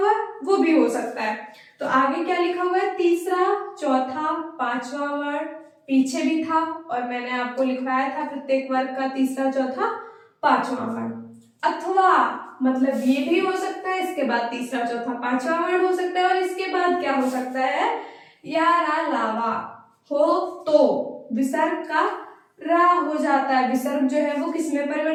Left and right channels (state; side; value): identical; both; correlation 1.00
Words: है वो भी हो सकता है। तो आगे क्या लिखा हुआ है, तीसरा, चौथा, पांचवा वर्ण, पीछे भी था और मैंने आपको लिखवाया था प्रत्येक वर्ग का तीसरा, चौथा, पांचवा वर्ण। अथवा मतलब ये भी हो सकता है, इसके बाद तीसरा, चौथा, पांचवा वर्ण हो सकता है, और इसके बाद क्या हो सकता है, या रा लावा हो तो विसर्ग का रा हो जाता है। विसर्ग जो है वो किस में